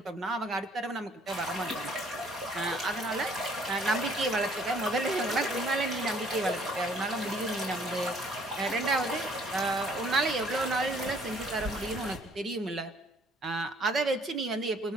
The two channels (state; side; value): normal; both; correlation 0.59